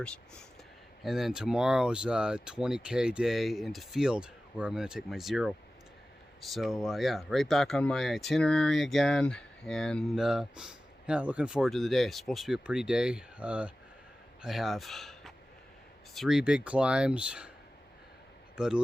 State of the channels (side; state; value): both; normal; correlation 0.96